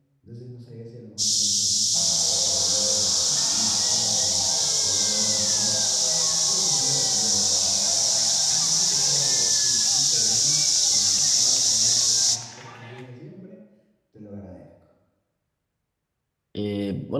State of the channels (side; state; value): both; identical; correlation 1.00